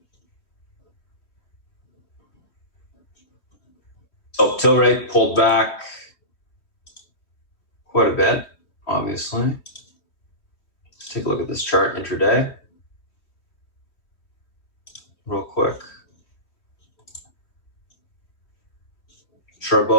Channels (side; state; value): right; late; 3.2 ms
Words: So Tilray pulled back quite a bit, obviously. Let's take a look at this chart intraday real quick.